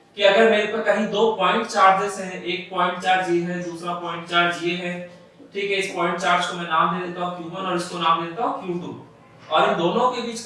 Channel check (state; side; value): identical; both; correlation 1.00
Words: कि अगर मेरे पर कहीं दो पॉइंट चार्जेस हैं, एक पॉइंट चार्ज ये है, दूसरा पॉइंट चार्ज ये है। ठीक है, इस पॉइंट चार्ज को मैं नाम दे देता हूं Q1 और इसको नाम दे देता हूं Q2, और इन दोनों के बीच